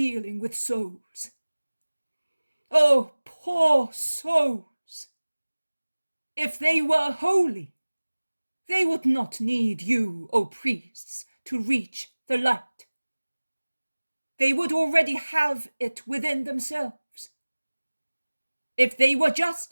with souls. Oh, poor souls! If they were holy, they would not need you, O priests, to reach the light. They would already have it within themselves. If they were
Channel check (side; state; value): both; inverted; correlation -1.00